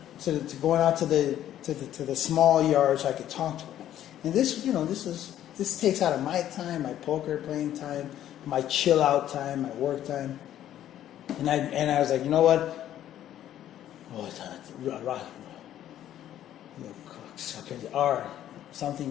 to going out to the small yard so I could talk to him. And this, you know, this takes out of my time, my poker playing time, my chill out time, my work time. And I was like, you know what? Oh, it's R,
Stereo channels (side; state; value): right; quieter; 11.7 dB